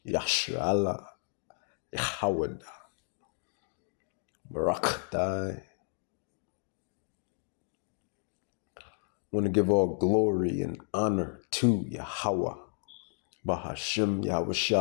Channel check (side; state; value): right; silent; digital silence